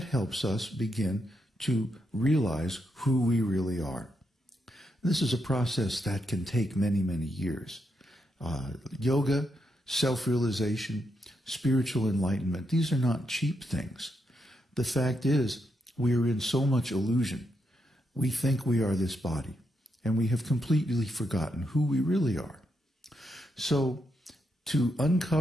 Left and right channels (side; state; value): both; normal; correlation 0.82